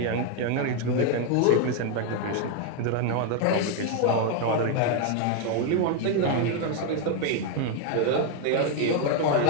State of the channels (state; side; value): different; both; correlation 0.01